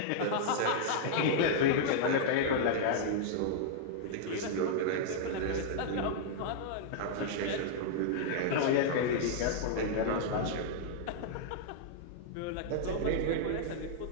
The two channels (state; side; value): different; both; correlation -0.01